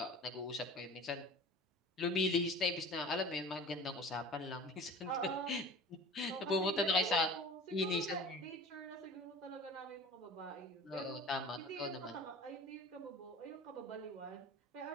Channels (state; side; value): normal; both; correlation 0.40